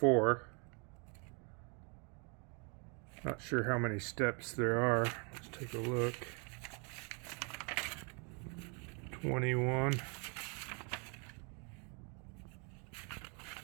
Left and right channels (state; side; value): quieter; left; 36.0 dB